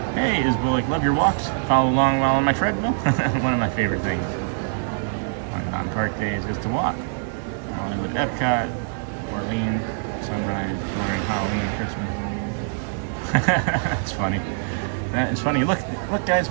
Hey, Isbullick, love your walks. Follow along while on my treadmill. One of my favorite things on park days is to walk. Hollywood, Epcot, Orleans, Sunrise, during Halloween, Christmas. That's funny. That is funny. Look, guys,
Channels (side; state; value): left; silent; digital silence